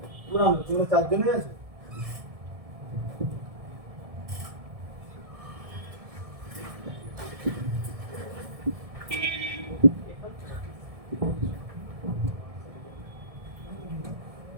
পুরানো তোমরা 4 জনই আছে।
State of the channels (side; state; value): left; late; 1.7 ms